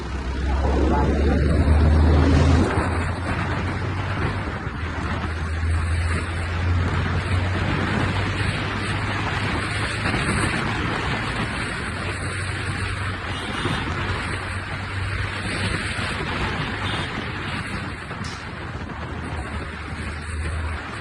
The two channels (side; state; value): both; identical; correlation 1.00